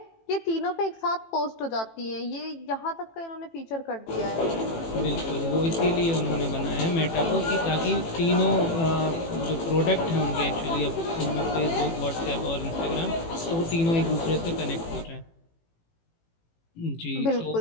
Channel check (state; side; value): late; right; 18 ms